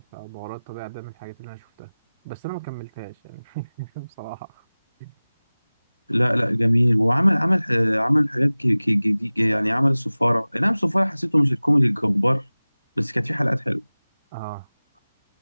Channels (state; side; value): inverted; both; correlation -0.99